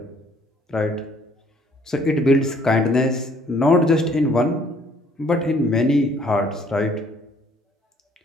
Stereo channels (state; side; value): normal; both; correlation 0.61